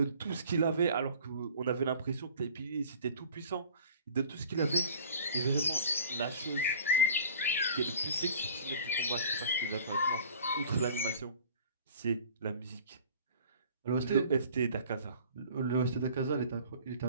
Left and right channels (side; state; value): both; inverted; correlation -0.46